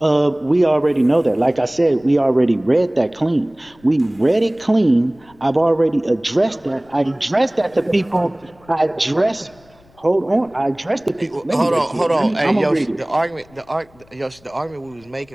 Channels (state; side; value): noise; left; rumble, 29 dB below the sound